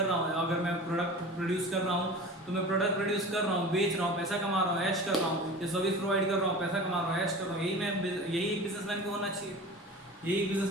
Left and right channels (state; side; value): normal; both; correlation 0.36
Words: रहा हूँ, अगर मैं प्रोडक्ट प्रोड्यूस कर रहा हूँ तो मैं प्रोडक्ट प्रोड्यूस कर रहा हूँ, बेच रहा हूँ, पैसा कमा रहा हूँ, ऐश कर रहा हूँ, या सर्विस प्रोवाइड कर रहा हूँ, पैसा कमा रहा हूँ, ऐश कर रहा हूँ। यही एक बिजनेसमैन को होना चाहिए, यही